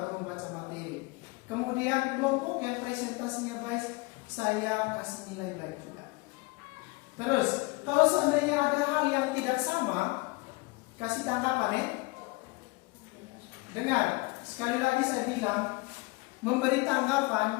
membaca materi. Kemudian kelompok yang presentasinya baik saya kasih nilai baik juga. Terus kalau seandainya ada hal yang tidak sama, kasih tanggapan ya. Dengar, sekali lagi saya bilang, memberi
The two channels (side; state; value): right; quieter; 25.6 dB